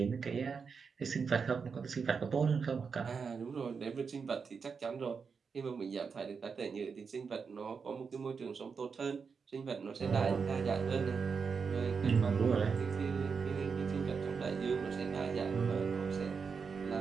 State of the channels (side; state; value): left; quieter; 5.6 dB